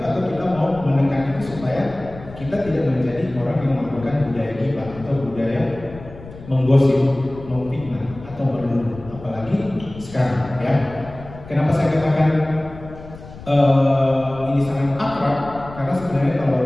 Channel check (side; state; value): left; noise; rumble, 16 dB below the sound